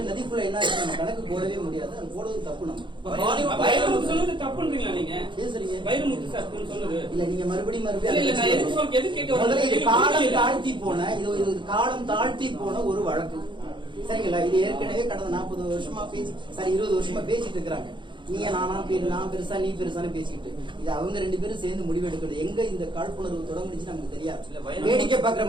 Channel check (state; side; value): late; left; 0.23 ms